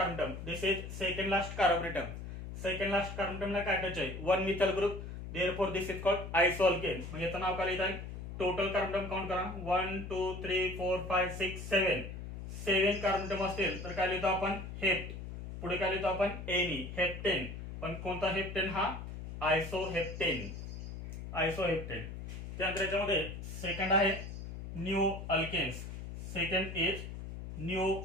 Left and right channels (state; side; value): noise; left; hum, 9 dB below the sound